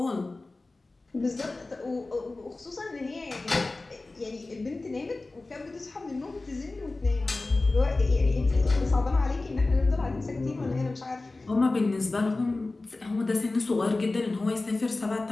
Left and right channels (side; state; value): right; quieter; 3.2 dB